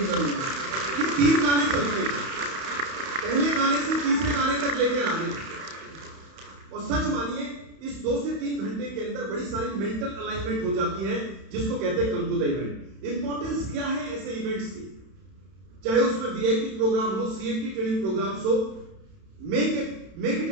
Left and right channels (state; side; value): late; left; 31 ms